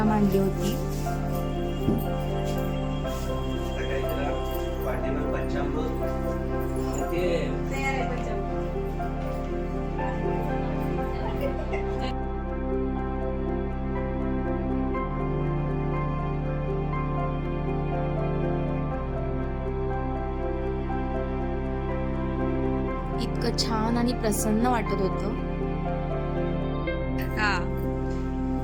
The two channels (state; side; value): identical; both; correlation 1.00